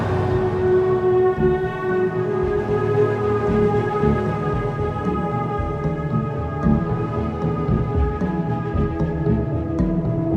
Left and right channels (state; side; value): identical; both; correlation 1.00